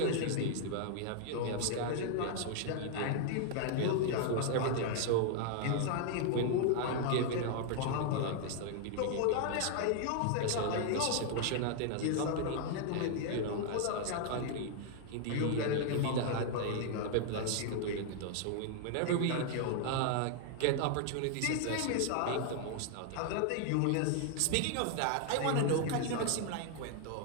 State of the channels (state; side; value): different; both; correlation 0.00